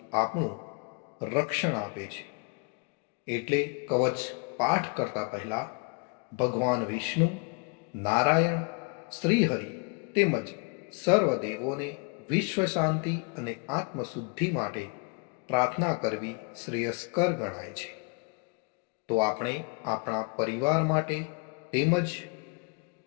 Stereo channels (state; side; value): quieter; right; 33.7 dB